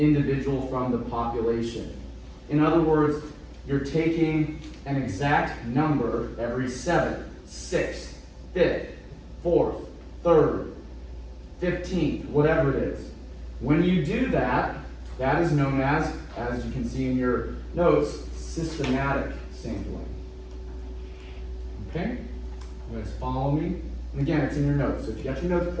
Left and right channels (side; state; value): both; identical; correlation 1.00